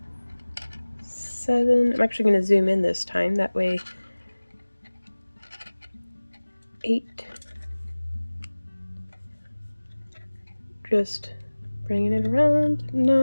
7, I'm actually going to zoom in this time, that way 8, just bringing it around,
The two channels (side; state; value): both; inverted; correlation -1.00